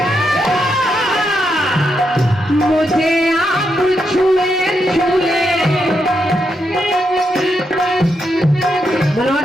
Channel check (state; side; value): normal; both; correlation 0.82